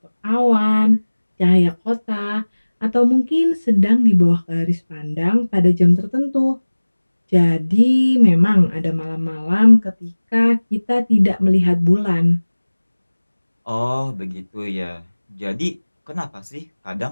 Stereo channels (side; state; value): both; inverted; correlation -1.00